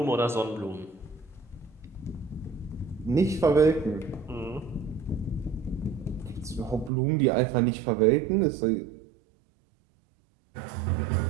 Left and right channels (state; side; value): drops out; left; at 6.9 s